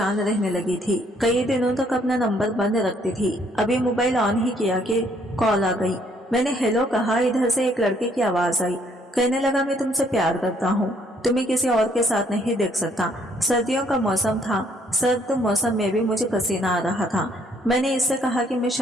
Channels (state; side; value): normal; both; correlation 0.66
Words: रहने लगी थी। कई दिनों तक अपना नंबर बंद रखती थी। अभी मोबाइल ऑन ही किया कि कॉल आ गई। मैंने हेलो कहा। इधर से एक लड़के की आवाज आई। कहने लगा, मैं तुमसे प्यार करता हूँ, तुम्हें किसी और के साथ नहीं देख सकता। सर्दियों का मौसम था। सर्द मौसम में भी मुझे पसीना आ रहा था। मैंने इससे कहा कि मैं